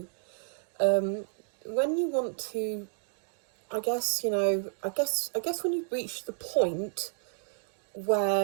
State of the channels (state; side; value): silent; left; digital silence